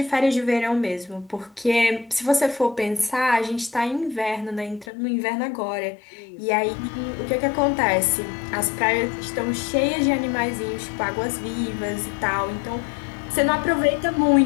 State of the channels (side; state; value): right; drops out; at 4.9 s